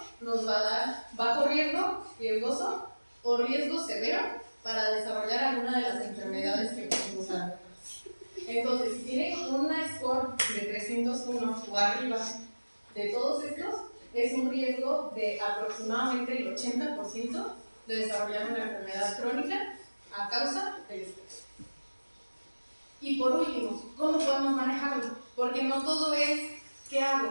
nos va a dar bajo riesgo, riesgoso o riesgo severo para desarrollar alguna de las enfermedades que podemos dar. Entonces, si tienen una score de 301 o arriba de todos estos, es un riesgo de aproximadamente el 80% de desarrollar una enfermedad crónica a causa del estrés. Y por último, ¿cómo podemos manejarlo? Porque no todo es ¿qué hago?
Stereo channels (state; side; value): inverted; both; correlation -1.00